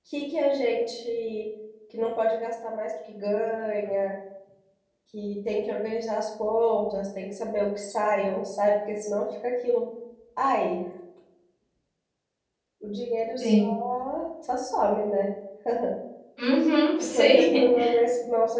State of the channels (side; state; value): both; identical; correlation 1.00